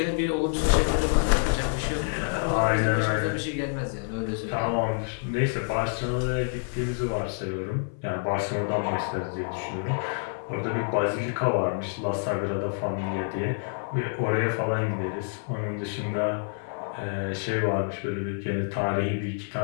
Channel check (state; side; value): silent; right; 57 dB below the other